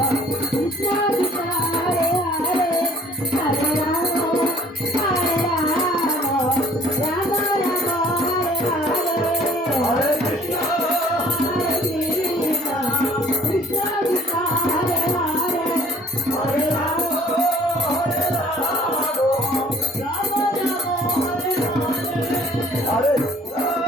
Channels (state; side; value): normal; both; correlation 0.55